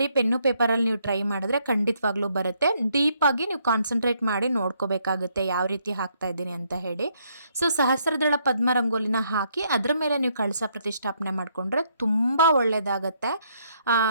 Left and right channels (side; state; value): both; inverted; correlation -0.72